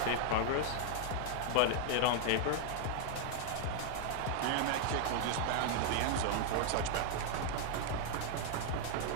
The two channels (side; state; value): both; different; correlation 0.00